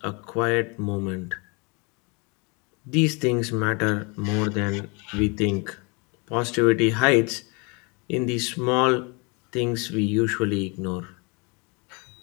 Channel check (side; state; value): right; quieter; 30.7 dB